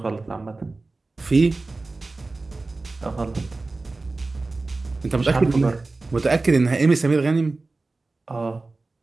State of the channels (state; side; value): quieter; left; 3.4 dB